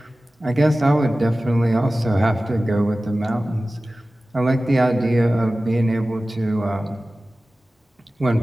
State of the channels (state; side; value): normal; both; correlation 0.96